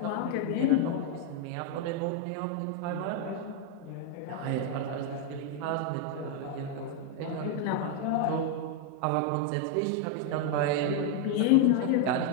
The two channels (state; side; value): different; both; correlation 0.00